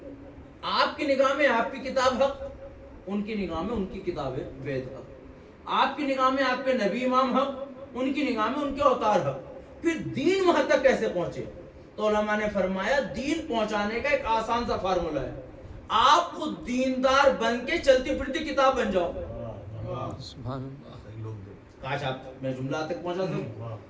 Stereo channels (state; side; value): identical; both; correlation 1.00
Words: آپ کی نگاہ میں آپ کی کتاب حق، ان کی نگاہ میں ان کی کتاب ہے وید حق. آپ کی نگاہ میں آپ کے نبی امام حق، ان کی نگاہ میں ان کے اوتار حق. پھر دین وہاں تک کیسے پہنچے؟ تو علماء نے فرمایا دین پہنچانے کا ایک آسان سا فارمولہ ہے، آپ خود دیندار بن کے چلتی پھرتی کتاب بن جاؤ. کاش آپ میں جملہ تک پہنچا دوں.